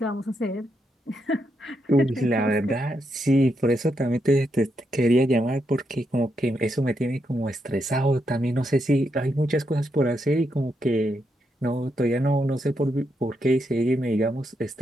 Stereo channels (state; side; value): normal; both; correlation 0.81